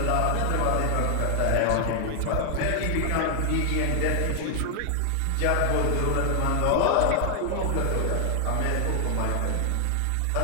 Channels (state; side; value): different; both; correlation 0.00